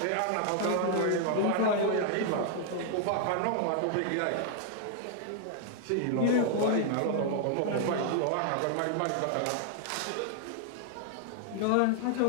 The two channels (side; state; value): both; different; correlation 0.00